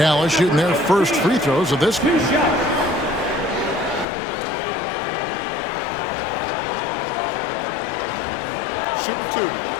shooting their first free throws of this game. Shoot two.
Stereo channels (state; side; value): drops out; right; at 4.0 s